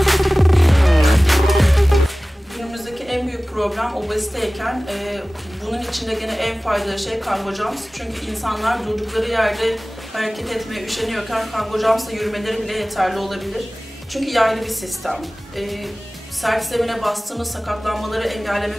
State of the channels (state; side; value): normal; both; correlation 0.98